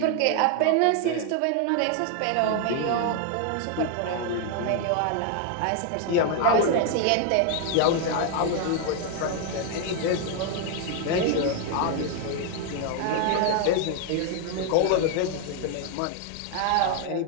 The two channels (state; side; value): different; both; correlation 0.01